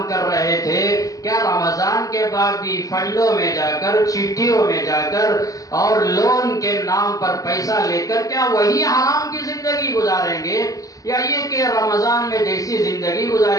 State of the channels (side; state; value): right; late; 0.17 ms